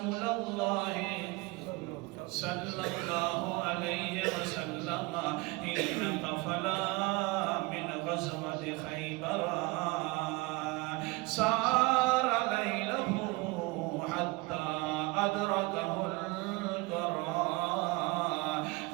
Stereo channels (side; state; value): left; quieter; 24.2 dB